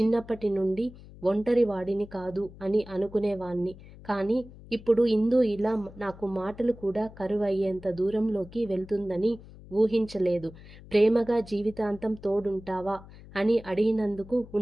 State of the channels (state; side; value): noise; left; hum, 19 dB below the sound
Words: నుండి ఒంటరి వాడిని కాదు అని అనుకునేవాణ్ణి. కానీ ఇప్పుడు ఇందు ఇలా నాకు మాటలు కూడా కరువయ్యేంత దూరంలోకి వెళ్తుందని ఊహించలేదు. ప్రేమగా జీవితాంతం తోడుంటావా అని అడిగినందుకు